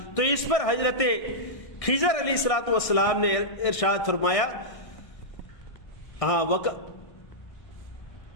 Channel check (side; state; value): right; late; 1.6 ms